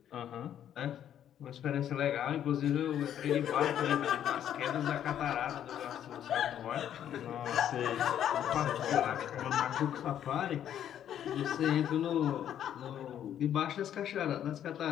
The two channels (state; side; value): quieter; right; 10.2 dB